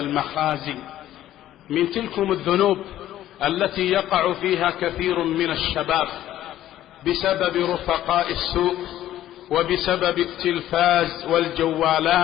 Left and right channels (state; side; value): quieter; right; 13.0 dB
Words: من تلكم الذنوب التي يقع فيها كثير من الشباب بسبب رفقاء السوء وبسبب التلفاز